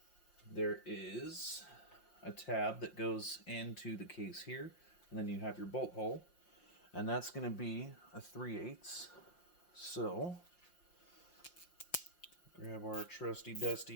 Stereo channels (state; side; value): late; right; 5.7 ms